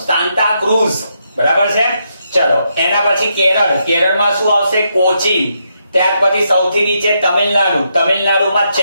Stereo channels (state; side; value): inverted; both; correlation -0.80